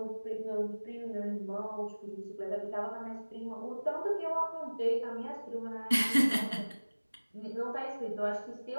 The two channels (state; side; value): inverted; both; correlation -1.00